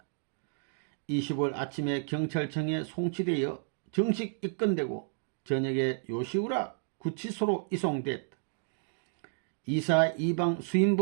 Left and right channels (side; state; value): left; silent; digital silence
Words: 25일 아침에 경찰청에 송치되어 정식 입건되고 저녁에 요시우라 구치소로 이송됐다. 이사 이방